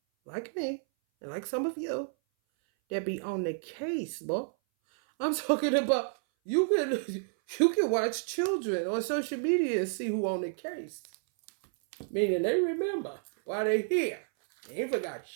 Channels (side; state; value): left; silent; 57 dB below the other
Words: like me, and like some of you, that be on the case, boy. I'm talking about, you can watch children on social media and see who on the case. Meaning they remember while they here. They ain't forgot